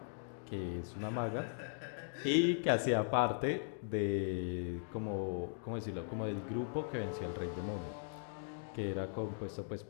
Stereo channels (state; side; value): silent; right; digital silence